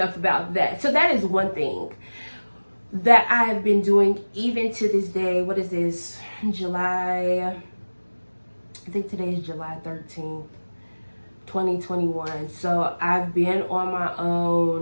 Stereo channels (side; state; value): both; inverted; correlation -1.00